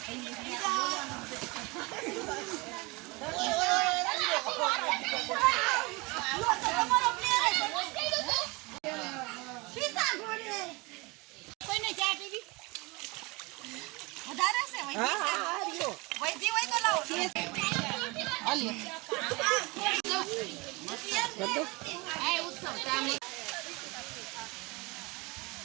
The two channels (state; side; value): quieter; left; 25.6 dB